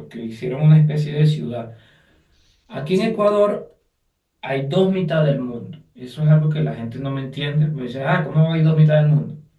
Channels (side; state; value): both; identical; correlation 1.00